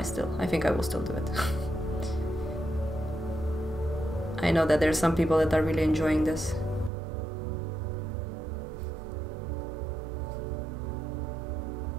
I think I will still do it. I know that there's some people that are really enjoying this.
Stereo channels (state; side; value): drops out; left; at 6.9 s